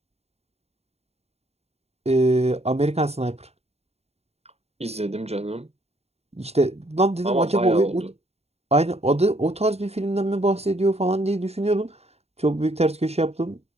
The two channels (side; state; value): left; late; 0.30 ms